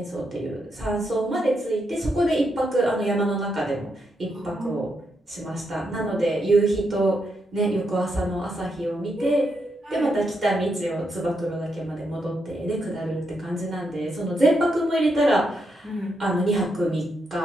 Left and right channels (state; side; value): normal; both; correlation 0.81